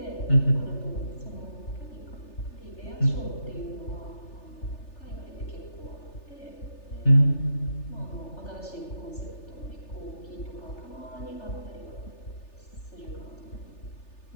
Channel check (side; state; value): right; late; 3.4 ms